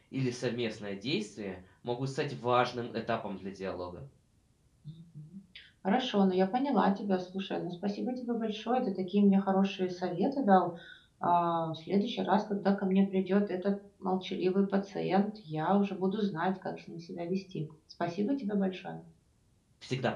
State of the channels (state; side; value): identical; both; correlation 1.00